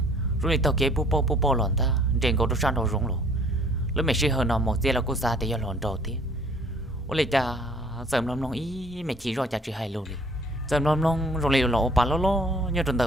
rồi tao kế bố bố lòn ta trên cầu sang đầu rung luôn lúc mẹ sẽ hơn nó một giờ là cô xa thì giờ lòn đầu tiếc ôi lại cha sớm lòng ý mẹ chỉ rồi cha chỉ hay luôn đi sớm lòng rồi lại lộ bà lo như trong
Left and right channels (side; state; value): both; normal; correlation 0.56